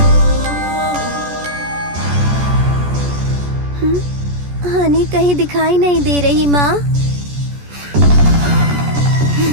हनी कहीं दिखाई नहीं दे रही माँ।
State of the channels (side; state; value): left; late; 14 ms